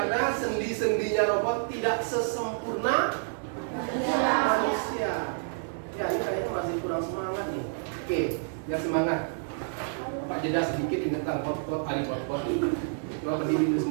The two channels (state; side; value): silent; left; digital silence